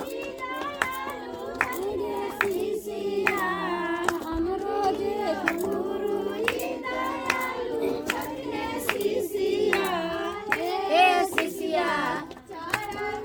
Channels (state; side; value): identical; both; correlation 1.00